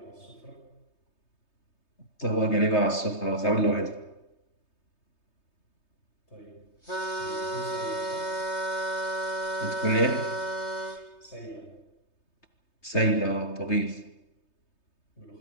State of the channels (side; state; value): right; late; 3.3 ms